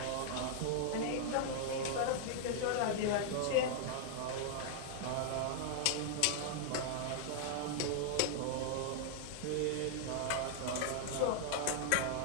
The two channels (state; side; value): different; both; correlation -0.01